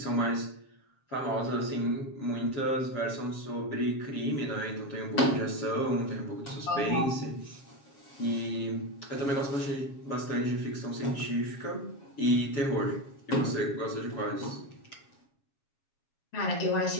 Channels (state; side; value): late; right; 7.3 ms